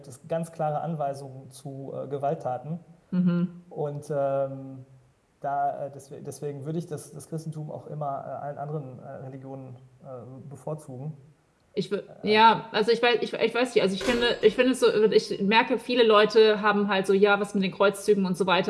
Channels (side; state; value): both; identical; correlation 1.00